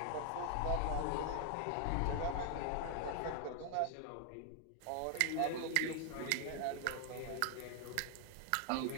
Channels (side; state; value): both; different; correlation 0.00